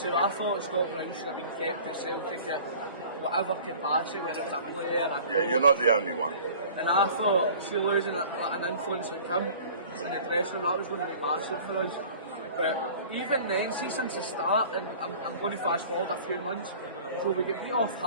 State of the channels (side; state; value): both; inverted; correlation -0.46